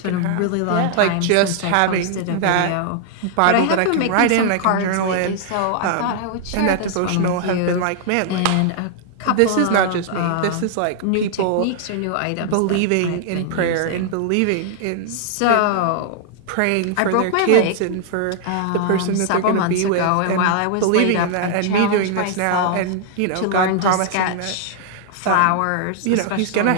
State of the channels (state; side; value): different; both; correlation 0.00